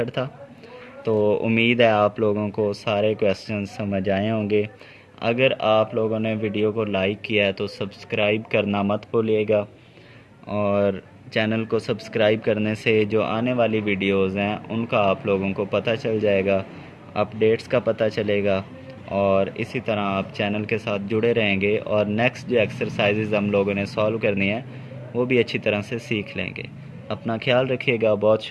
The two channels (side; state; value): both; identical; correlation 1.00